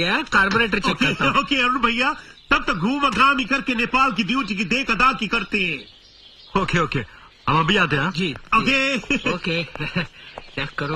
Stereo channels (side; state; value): both; identical; correlation 1.00